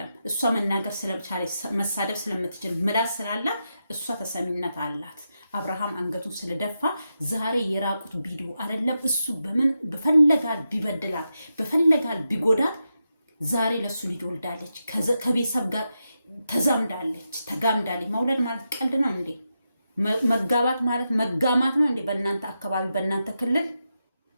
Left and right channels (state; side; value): inverted; both; correlation -0.87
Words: እሷ መናገር ስለቻለች መሳደብ ስለምትችል ምላስ ስላላት እሷ ተሰሚነት አላት። አብርሃም አንገቱን ስለደፋ ዛሬ የራቁት ቪዲዮ አይደለም። እሱ በምን በፈለጋል ቢበድላት በፈለጋል ቢጎዳት ዛሬ ለሱ ልጅ ወልዳለች፣ ከቤተሰብ ጋር ተዛምዳለች፣ ተጋምዳለች። መውለድ ማለት ቀልድ ነው እንዴ? መጋባት ማለት መጋማት ነው እንዴ? በእናንተ አካባቢ በእናንተ ክልል